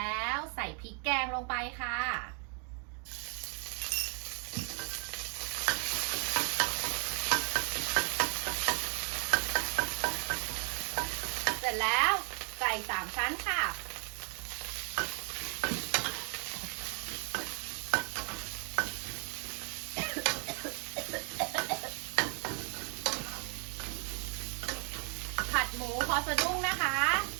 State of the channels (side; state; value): left; quieter; 39.6 dB